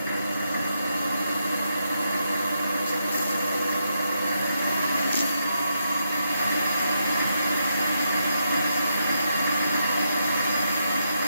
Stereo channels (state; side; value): inverted; both; correlation -0.81